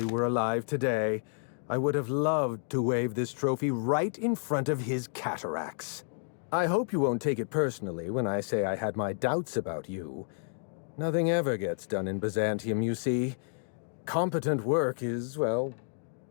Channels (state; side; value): silent; right; digital silence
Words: were alive today, I would have loved to wave this trophy right in front of his cataracts. I hope you won't take it personally when I say I had my doubts about you. Nothing ever gets done in Byzantium, you see. Competent work is, well,